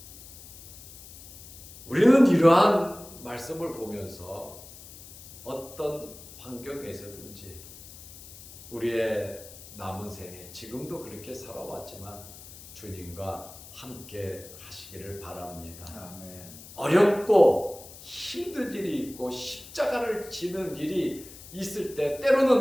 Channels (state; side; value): noise; left; hiss, 17 dB below the sound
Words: 우리는 이러한 말씀을 보면서 어떤 환경에서든지 우리의 남은 생에 지금도 그렇게 살아왔지만 주님과 함께 하시기를 바랍니다. 아멘. 어렵고 힘든 일이 있고 십자가를 지는 일이 있을 때